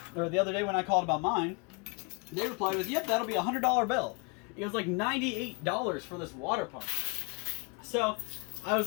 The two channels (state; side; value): quieter; right; 31.0 dB